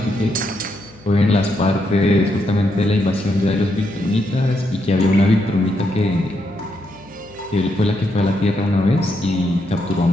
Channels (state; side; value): noise; left; hum, 26 dB below the sound